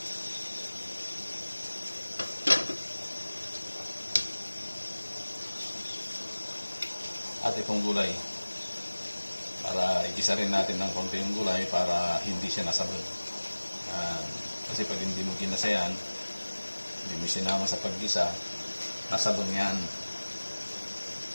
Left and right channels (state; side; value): inverted; both; correlation -1.00